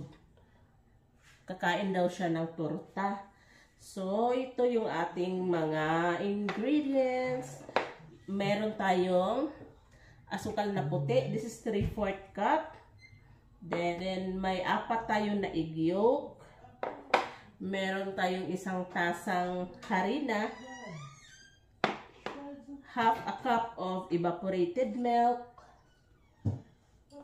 Kakain daw siya ng torta. So, ito yung ating mga ingredients. Meron tayong asukal na puti. This is 3/4 cup. Then may 4 tayong na egg yolk. Meron tayong isang tasang harina. Half a cup of evaporated milk.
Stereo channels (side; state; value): both; identical; correlation 1.00